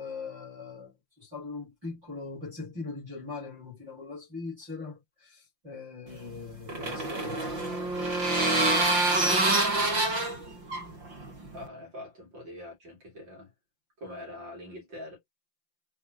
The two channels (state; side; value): late; left; 5.7 ms